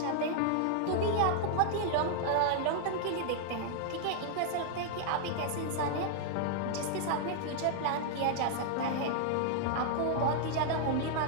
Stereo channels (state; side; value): different; both; correlation 0.00